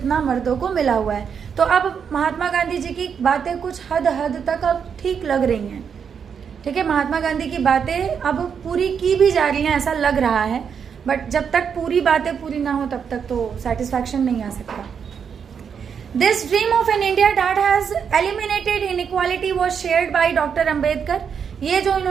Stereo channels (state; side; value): quieter; left; 7.0 dB